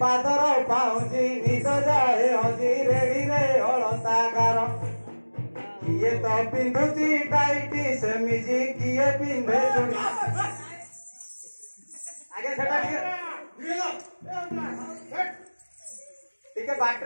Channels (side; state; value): both; inverted; correlation -1.00